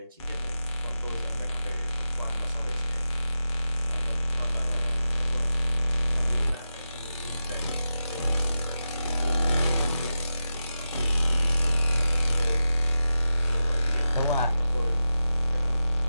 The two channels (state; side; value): inverted; both; correlation -0.91